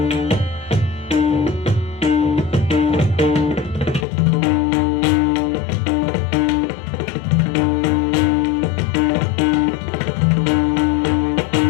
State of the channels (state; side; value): drops out; right; at 4.0 s